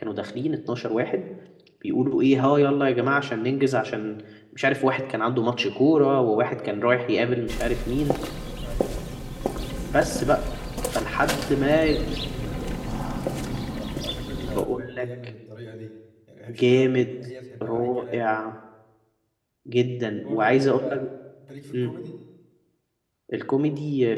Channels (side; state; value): both; identical; correlation 1.00